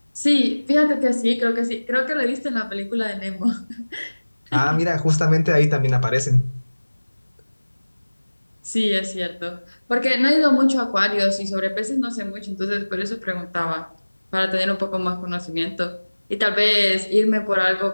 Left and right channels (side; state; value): both; inverted; correlation -1.00